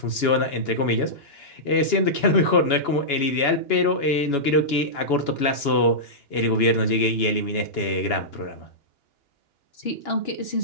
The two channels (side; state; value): right; late; 2.9 ms